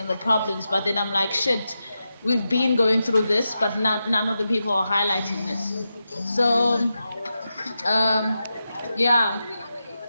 the problems, but then I'm like, shit, we've been going through this, but none of the people are highlighting this. So, yeah,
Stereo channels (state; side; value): inverted; both; correlation -0.89